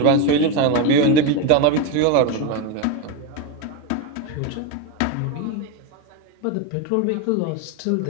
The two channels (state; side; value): different; both; correlation 0.04